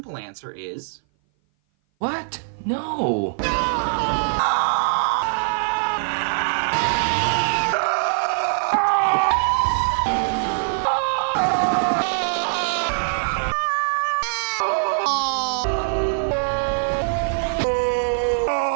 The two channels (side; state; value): left; silent; 58 dB below the other